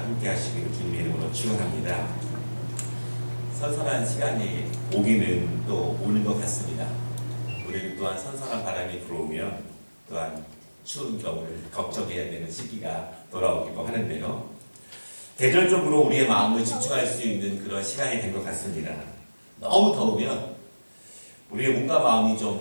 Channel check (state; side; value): inverted; both; correlation -1.00